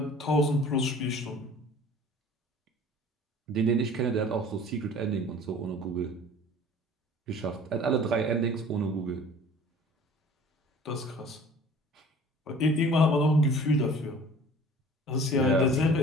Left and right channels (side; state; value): both; normal; correlation 0.47